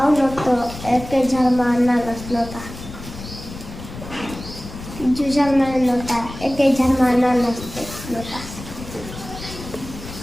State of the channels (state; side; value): noise; left; rumble, 12 dB below the sound